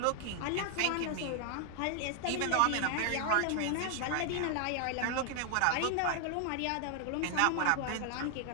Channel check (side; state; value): both; different; correlation 0.00